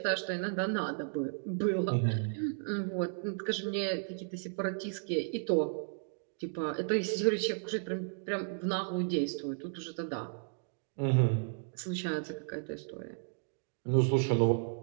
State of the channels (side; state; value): left; silent; digital silence